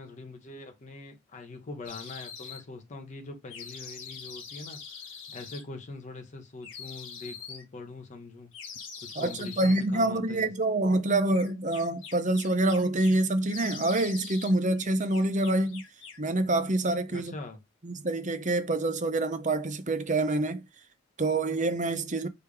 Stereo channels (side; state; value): both; normal; correlation 0.46